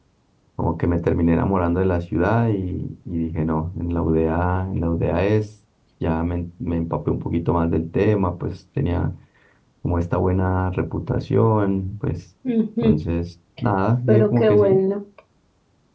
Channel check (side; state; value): both; identical; correlation 1.00